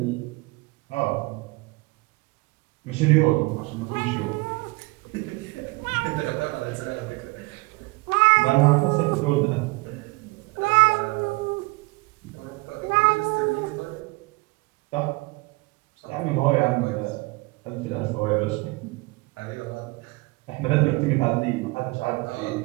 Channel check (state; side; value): quieter; left; 24.9 dB